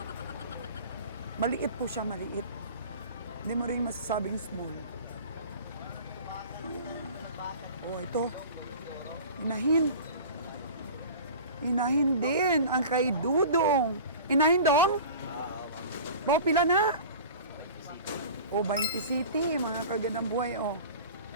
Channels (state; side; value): inverted; both; correlation -0.38